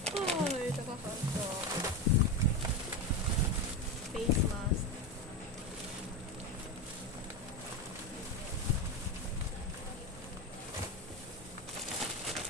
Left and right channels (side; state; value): both; normal; correlation 0.17